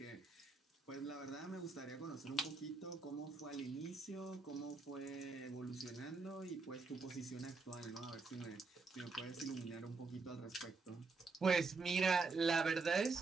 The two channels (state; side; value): quieter; left; 4.0 dB